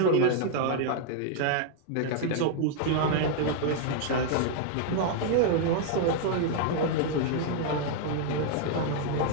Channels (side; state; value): both; different; correlation 0.00